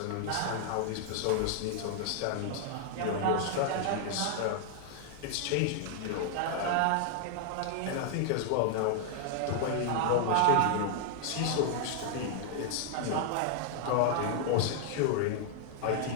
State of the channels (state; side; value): different; both; correlation 0.00